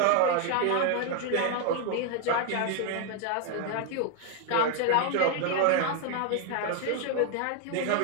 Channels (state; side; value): different; both; correlation 0.01